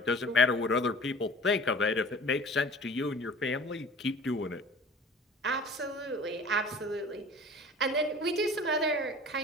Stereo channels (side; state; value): both; normal; correlation 0.44